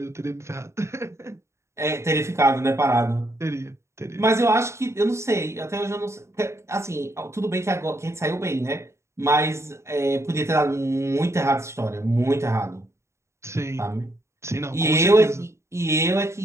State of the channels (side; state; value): left; late; 0.13 ms